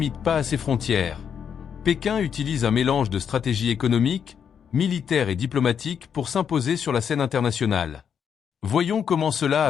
pas à ses frontières. Pékin utilise un mélange de stratégie économique, militaire et diplomatique pour s'imposer sur la scène internationale. Voyons comment cela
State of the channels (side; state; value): right; quieter; 7.7 dB